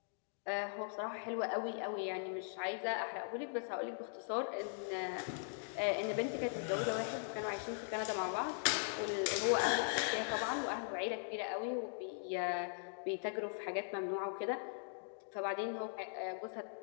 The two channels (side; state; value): right; silent; digital silence